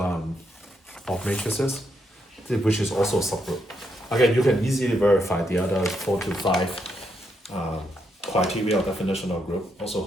matrices, which is also a subgroup. Again, you can easily verify the other 4 to 5 criteria or definition of group also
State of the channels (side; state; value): both; normal; correlation 0.79